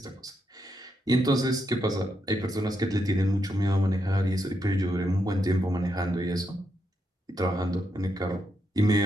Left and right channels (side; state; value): both; normal; correlation 0.81